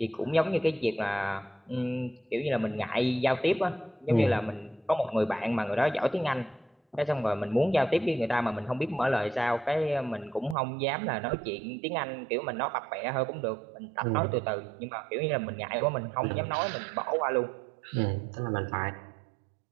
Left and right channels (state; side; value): drops out; left; at 10.6 s